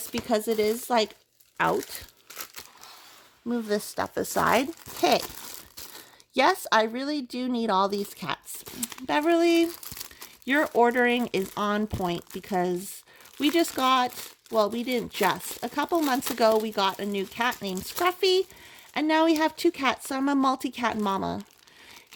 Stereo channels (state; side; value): identical; both; correlation 1.00